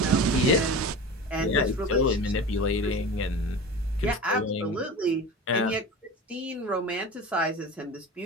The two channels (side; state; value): both; normal; correlation 0.32